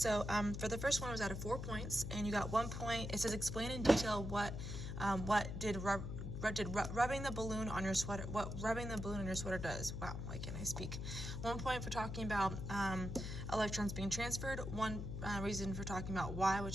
for the first one, it was out of 4 points, and you got 1 point. It says explain in detail what rubbing the balloon on your sweater. What rubbing the balloon on your sweater does. Wow, why can't I speak? 1 point for talking about electrons being transferred. 1 reason for talking about why,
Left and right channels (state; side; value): noise; left; hum, 5 dB below the sound